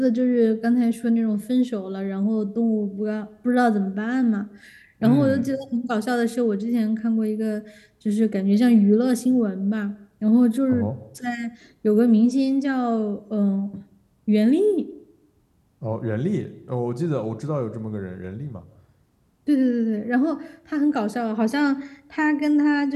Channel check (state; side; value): identical; both; correlation 1.00